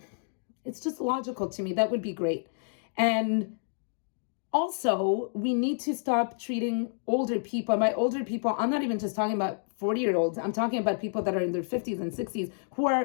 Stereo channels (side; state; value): right; silent; digital silence